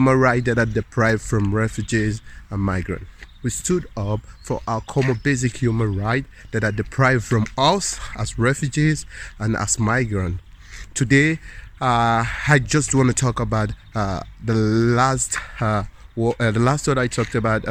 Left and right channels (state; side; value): identical; both; correlation 1.00